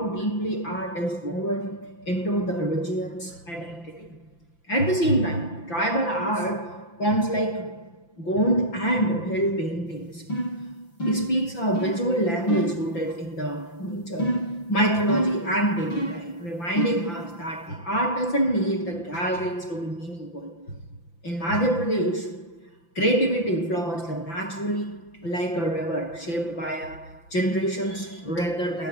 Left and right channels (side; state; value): right; late; 5.9 ms